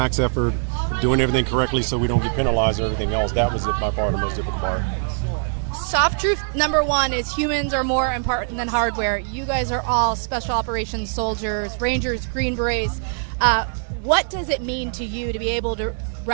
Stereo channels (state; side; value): silent; left; 62 dB below the other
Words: effort, doing everything correctly so we don't get penalized or everything else. That was by far the most difficult part. Soft truth number one is humans are more important than hardware. You guys are all special operations soldiers, Rangers, Green Berets. What does it mean to you to be able to